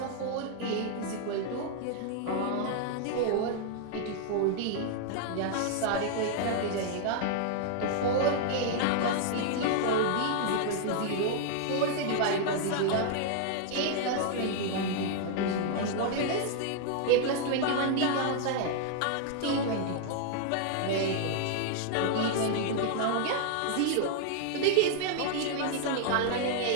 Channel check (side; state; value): both; different; correlation 0.00